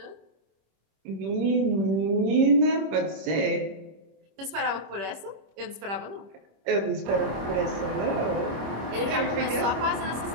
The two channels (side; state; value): left; late; 25 ms